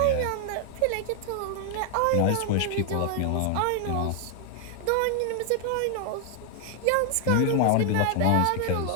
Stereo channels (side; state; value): both; different; correlation 0.00